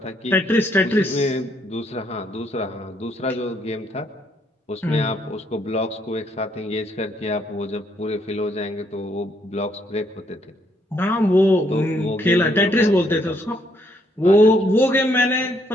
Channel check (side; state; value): both; normal; correlation 0.71